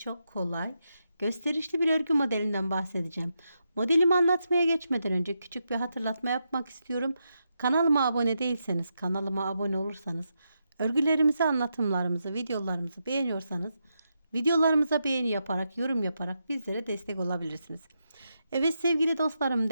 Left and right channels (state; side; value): inverted; both; correlation -0.84